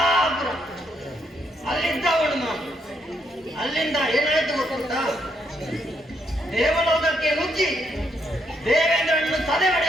ಅಲ್ಲಿದ್ದವನು ನಾನು. ಅಲ್ಲಿಂದ ಏನಾಯ್ತು ಗೊತ್ತುಂಟ? ದೇವಲೋಕಕ್ಕೆ ನುಗ್ಗಿ ದೇವೇಂದ್ರನನ್ನು ತಲೆ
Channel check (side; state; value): both; normal; correlation 0.76